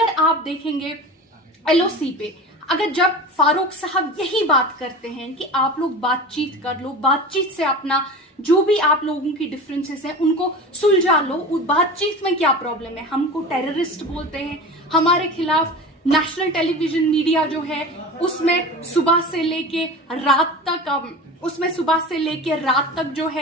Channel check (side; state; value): both; normal; correlation 0.32